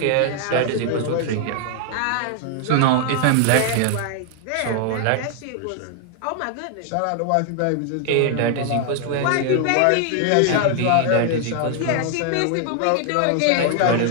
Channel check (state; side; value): different; both; correlation 0.00